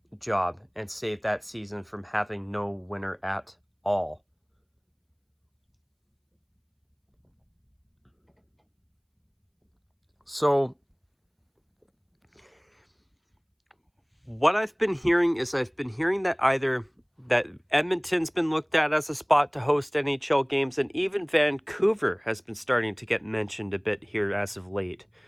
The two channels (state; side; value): identical; both; correlation 1.00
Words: job and save that season from having no winner at all. So what I've been hearing is that either that Edmonton's been looked at as a spot to host NHL games, and even Vancouver has been starting to get mentioned a bit here as of late.